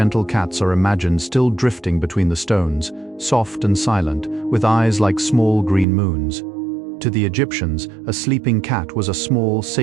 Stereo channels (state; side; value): drops out; left; at 5.9 s